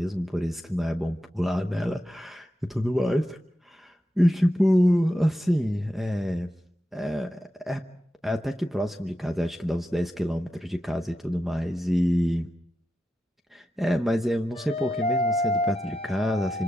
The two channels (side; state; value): both; normal; correlation 0.88